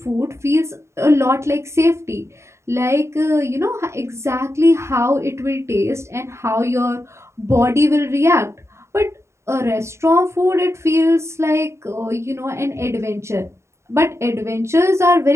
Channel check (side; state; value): left; late; 0.13 ms